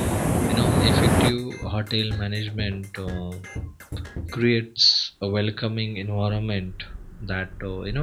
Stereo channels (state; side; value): identical; both; correlation 1.00